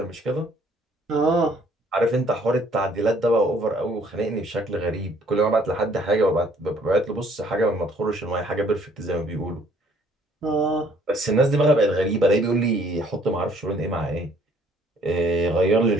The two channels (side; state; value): both; normal; correlation 0.61